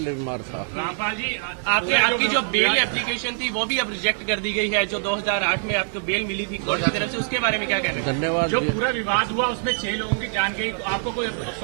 बीमार था। रामपाल जी, आपकी जो बेल एप्लीकेशन थी वो भी अब रिजेक्ट कर दी गई है, जो 2008 में आपको बेल मिली थी कोर्ट की तरफ से, उसके बारे में क्या कहना है? धन्यवाद। जो पूरा विवाद हुआ उसमें 6 लोगों की जान गई, तो आपको कोई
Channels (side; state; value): left; silent; 60 dB below the other